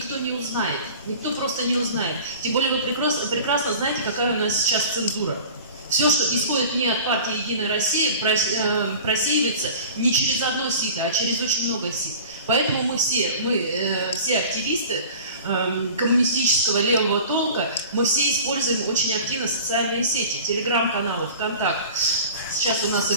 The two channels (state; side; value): inverted; both; correlation -0.40